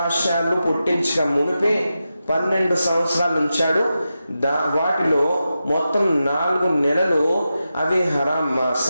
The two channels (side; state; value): both; inverted; correlation -0.90